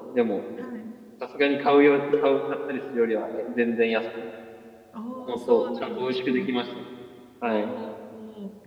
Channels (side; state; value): both; identical; correlation 1.00